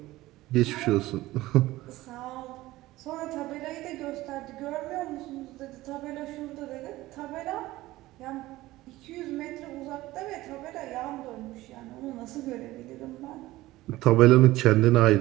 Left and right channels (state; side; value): quieter; left; 17.5 dB